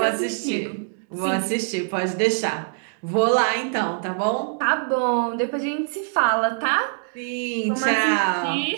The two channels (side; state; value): left; silent; digital silence